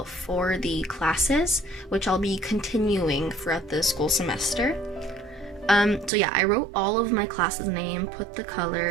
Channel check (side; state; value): left; drops out; at 6.1 s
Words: for the classes, which I'll be continuing throughout the school semester. So yeah, I wrote all of my classes' name, put the